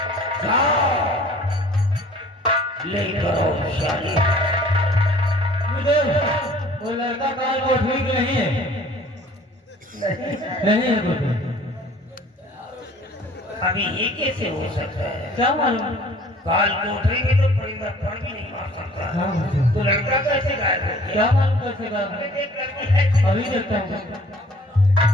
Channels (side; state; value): both; normal; correlation 0.52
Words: जाओ ले करो शादी। मुझे वो लड़का काल को ठीक नहीं है। नहीं है कुछ। अभी ये कैसे हो सकता है? क्या मालूम? काल कोठरी में तो परिंदा पर भी नहीं मार सकता। हाँ। तो लड़का कैसे गायब हो गया? क्या मालूम कैसे गायब? अभी देखता हूँ।